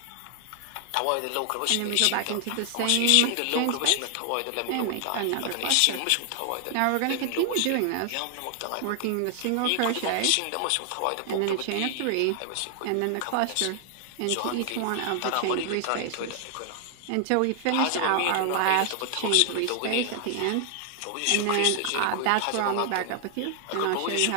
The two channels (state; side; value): different; both; correlation 0.00